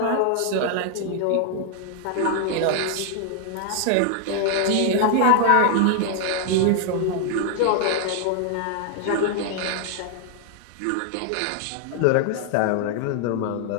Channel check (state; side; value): different; both; correlation 0.00